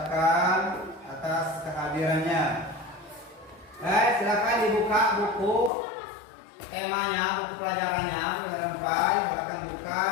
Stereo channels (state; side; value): drops out; right; at 5.7 s